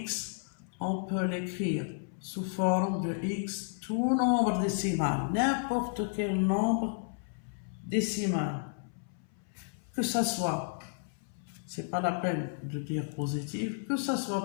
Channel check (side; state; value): right; silent; 56 dB below the other